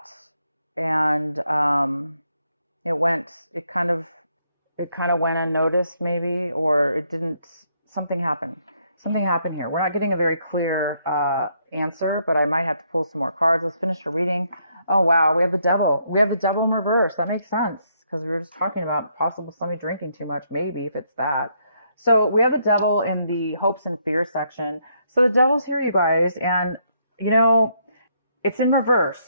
and it kind of went unnoticed, maybe, or it didn't. Something happened here. We're not getting a very clear answer, but I might have to pull some more cards. Let's finish the reading. Oh wow, we have the Devil. We have the Devil in reverse. That makes sense, because we were just talking about possible somebody drinking too much, maybe, if it's that. So we have the Devil in the hopes and fears section. So the Devil's here, you guys, and you know, it's in reverse.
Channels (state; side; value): inverted; both; correlation -0.73